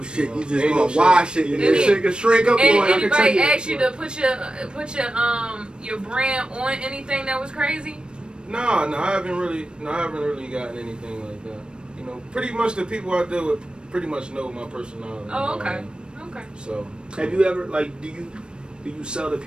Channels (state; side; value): late; left; 0.053 ms